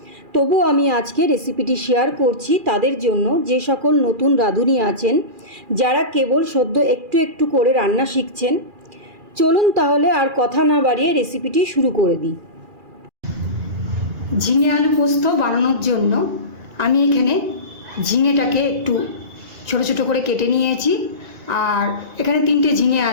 তবু আমি আজকে রেসিপিটি শেয়ার করছি তাদের জন্য যে সকল নতুন রাঁধুনি আছেন, যারা কেবল সদ্য একটু একটু করে রান্না শিখছেন। চলুন তাহলে আর কথা না বাড়িয়ে রেসিপিটি শুরু করে দিই। ঝিঙে আলু পোস্ত বানানোর জন্য আমি এখানে ঝিঙেটাকে একটু ছোট ছোট করে কেটে নিয়েছি। আর এখানে 3টে ঝিঙে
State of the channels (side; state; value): left; late; 2.4 ms